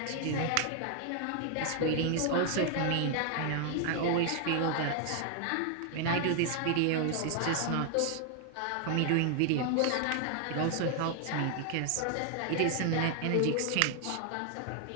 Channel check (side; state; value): both; different; correlation 0.00